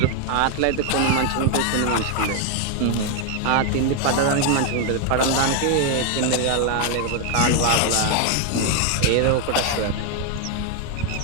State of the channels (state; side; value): different; both; correlation 0.01